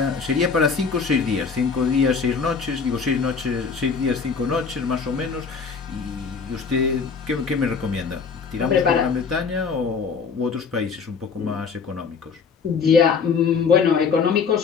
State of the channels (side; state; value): right; quieter; 5.5 dB